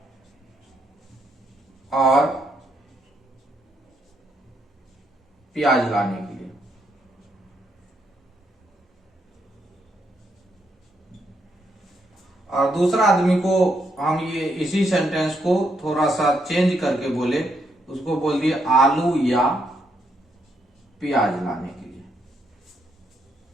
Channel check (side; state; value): both; normal; correlation 0.77